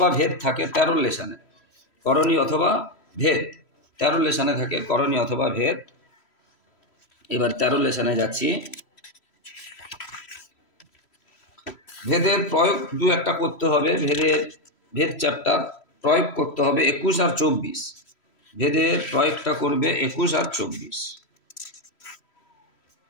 ভেদ থাকে 13 লেসনে, করণী অথবা ভেদ 13 লেসনে থাকে, করণী অথবা ভেদ। এবার 13 লেসনে যাচ্ছি। ভেদের প্রয়োগ 2-1টা করতে হবে, ভেদ চ্যাপ্টার প্রয়োগ করতে হবে 21 আর 24, ভেদের প্রয়োগটা করবে 21 আর 24।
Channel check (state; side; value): late; right; 3.1 ms